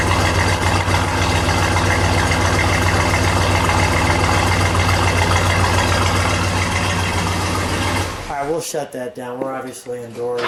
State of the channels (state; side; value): identical; both; correlation 1.00